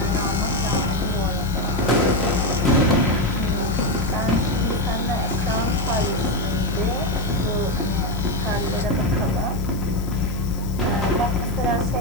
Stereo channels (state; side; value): noise; left; hiss, 19 dB below the sound